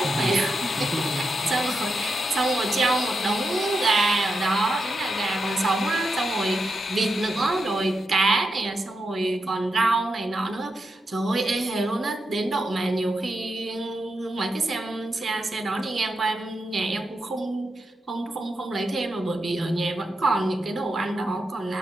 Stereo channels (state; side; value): normal; both; correlation 0.86